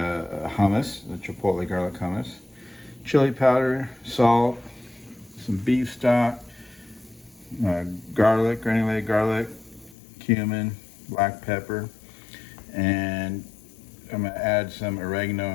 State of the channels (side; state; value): right; drops out; at 10.0 s